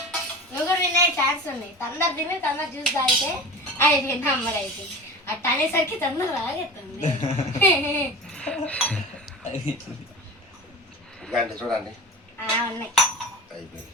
నువ్వు కూడా వినే ఛాన్స్ ఉంది. తొందర తిని తొందర జ్యూస్ తాగితే అయిపోయింది అమ్మడు అయిపోయింది. అట్ట అనేసరికి తొందర రాగెత్తుంది. ఇలాంటి చూడండి ఉన్నాయి. అయిపోయింది.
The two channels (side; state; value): both; normal; correlation 0.33